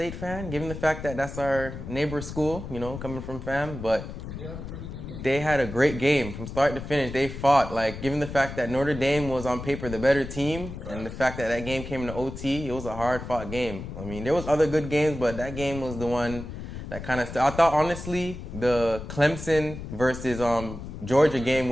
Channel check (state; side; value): noise; left; rumble, 9 dB below the sound